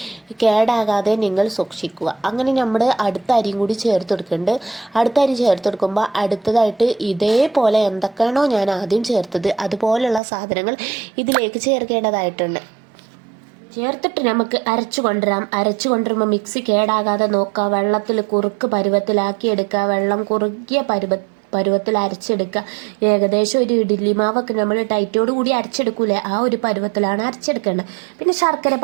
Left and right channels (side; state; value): left; drops out; at 10.2 s